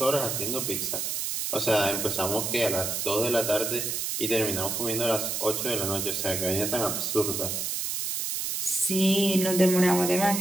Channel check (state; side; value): noise; right; hiss, 2 dB below the sound